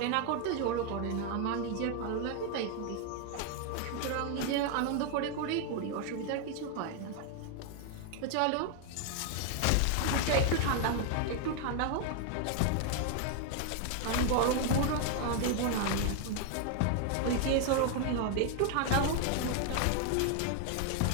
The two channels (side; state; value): both; different; correlation 0.00